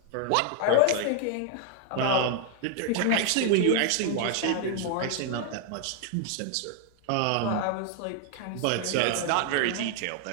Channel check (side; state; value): both; different; correlation 0.00